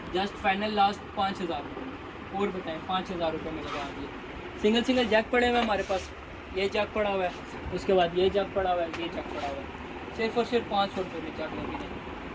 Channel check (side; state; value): both; identical; correlation 1.00